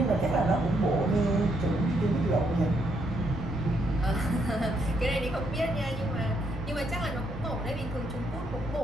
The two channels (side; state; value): both; normal; correlation 0.75